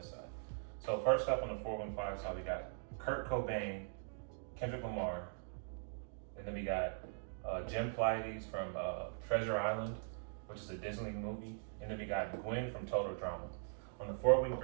side. So first up on the 4-wing 5 side, we got Kurt Cobain, Kendrick Lamar, and then we got Jen Pleiades from Treasure Island, which is a Disney movie, and then we got Gwen from Total Drama. On the 4-wing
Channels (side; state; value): left; silent; digital silence